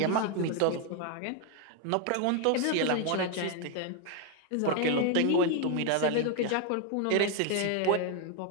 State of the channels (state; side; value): different; both; correlation 0.01